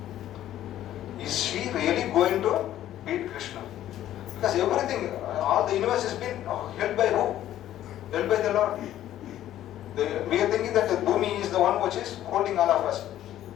Is she really going to beat Krishna? Because everything, all the universe has been held by who? Held by the Lord. We are thinking that the Bhumi is the one which is holding all of us.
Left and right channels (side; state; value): right; quieter; 12.5 dB